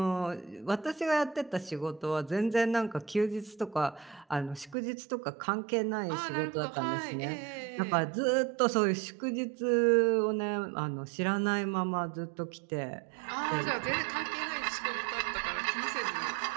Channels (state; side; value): drops out; left; at 4.8 s